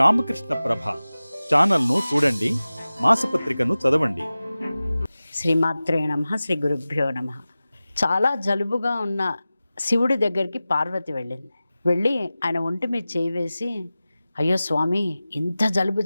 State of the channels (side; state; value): both; inverted; correlation -0.96